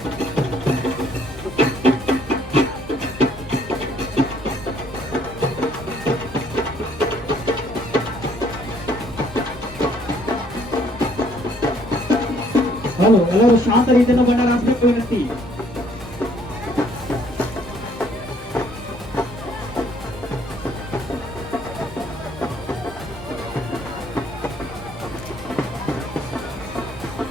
ಹಲೋ, ಎಲ್ಲರೂ ಶಾಂತ ರೀತಿಯಿಂದ ಬಂಡಾರ ಹಾಕಬೇಕು ವಿನಂತಿ.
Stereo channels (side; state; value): both; normal; correlation 0.63